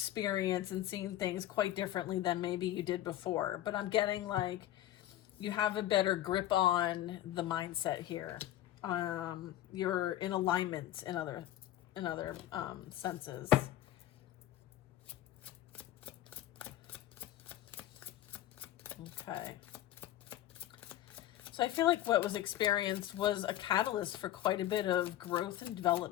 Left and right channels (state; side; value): quieter; right; 13.3 dB